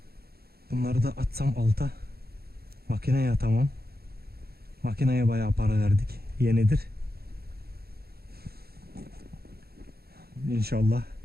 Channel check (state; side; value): late; left; 0.45 ms